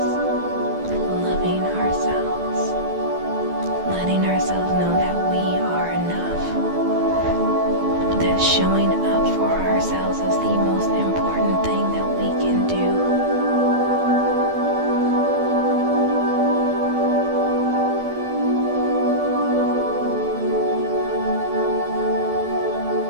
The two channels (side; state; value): left; late; 12 ms